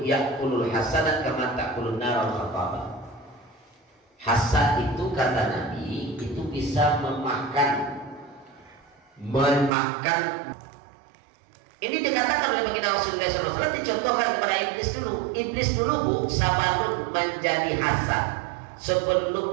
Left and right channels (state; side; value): drops out; left; at 9.7 s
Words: ya'kulul hasadat kama ta'kulun nar al-khataba. Hasad itu kata Nabi itu bisa memakan. Ini dikatakan oleh baginda Rasulullah SAW, dicontohkan kepada iblis dulu Bu, sebelum menjadi hasad,